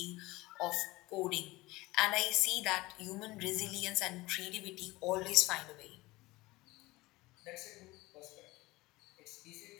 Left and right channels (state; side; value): quieter; right; 20.4 dB